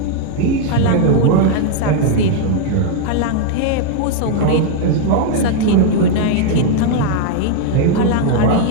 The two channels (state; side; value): different; both; correlation 0.00